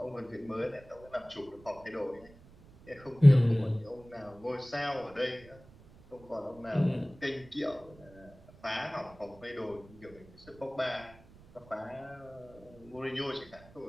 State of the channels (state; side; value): noise; right; rumble, 23 dB below the sound